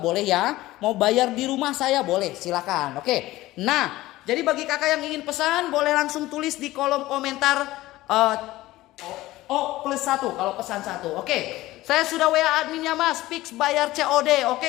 boleh ya. Mau bayar di rumah saya boleh, silakan. Oke. Nah, jadi bagi kakak yang ingin pesan boleh langsung tulis di kolom komentar O+1 kalau pesan 1. Oke. Saya sudah WA adminnya, Mas, fix bayar COD.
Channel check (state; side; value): quieter; right; 17.3 dB